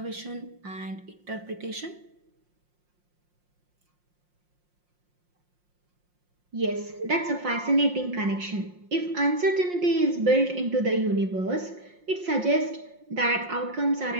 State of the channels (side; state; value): left; late; 5.6 ms